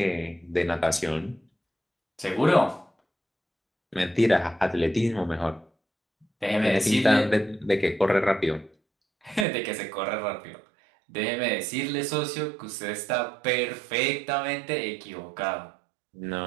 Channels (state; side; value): drops out; left; at 9.5 s